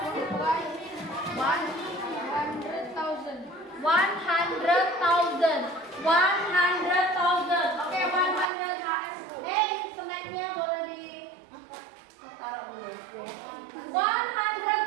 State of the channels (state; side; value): drops out; left; at 8.5 s